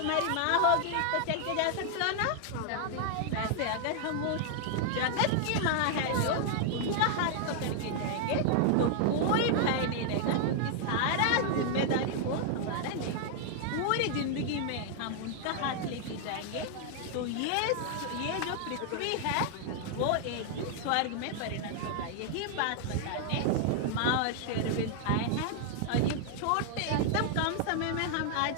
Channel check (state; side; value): different; both; correlation 0.00